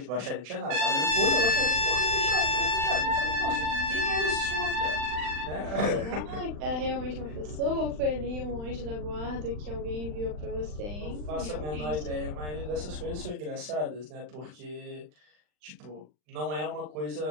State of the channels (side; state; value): left; late; 39 ms